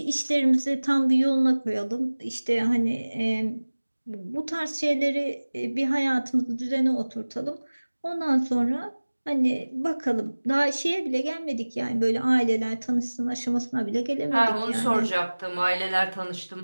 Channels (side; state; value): both; inverted; correlation -1.00